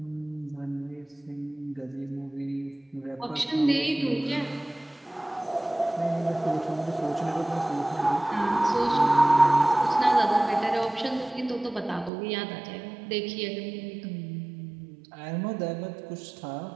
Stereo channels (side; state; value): left; drops out; at 12.1 s